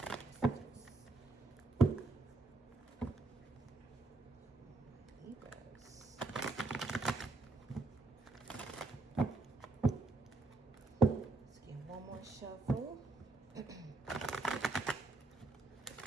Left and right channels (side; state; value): left; quieter; 3.2 dB